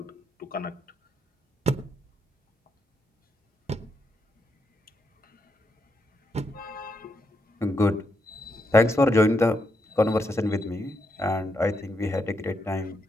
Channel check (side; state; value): both; normal; correlation 0.81